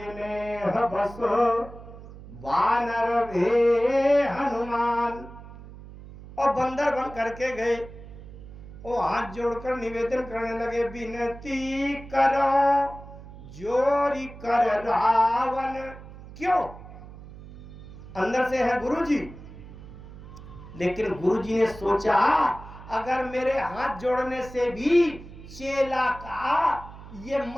बसो वानर भे हनुमान। और बंदर बन करके गए। वो हाथ जोड़कर निवेदन करने लगे, विनती करो जोरी कर रावण। क्यों? अंदर से है गुरुजी, लेकिन गुरुजी ने सोचा अगर मेरे हाथ जोड़ने से भी चेला का ये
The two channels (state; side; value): noise; right; hum, 16 dB below the sound